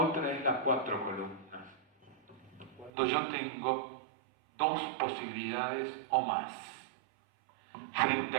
otra es las 4 columnas. Cuando yo tengo 2 posibilidades o más. Frente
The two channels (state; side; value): drops out; left; at 2.9 s